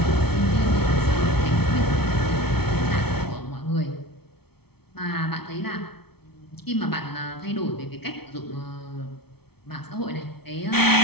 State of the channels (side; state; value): right; late; 0.96 ms